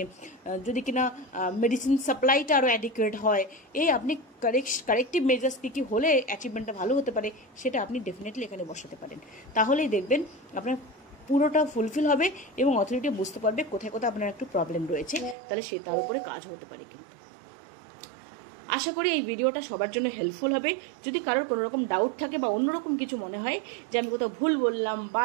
যদি কিনা মেডিসিন সাপ্লাইটা আরও অ্যাডিকুয়েট হয়, এই আপনি কারেক্টিভ মেজার্স কী হলে অ্যাচিভমেন্টটা ভালো হতে পারে সেটা আপনি ডেফিনেটলি এখানে বসাতে পারেন। তাহলেই দেখবেন আপনার পুরোটা ফুলফিল হবে এবং অথরিটি বুঝতে পারবে কোথায় কোথায় আপনার একটু প্রবলেম রয়েছে, তাহলে সে তার উপরে কাজ হতে পারে। কিন্তু আশা করি এই ভিডিওটা সবার জন্য হেল্পফুল হবে। যদি কারোর কোনো রকম ডাউট থাকে বা অন্যরকম কিছু মনে হয় যে আমি কোথাও ভুল বললাম বা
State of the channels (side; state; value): left; drops out; at 15.4 s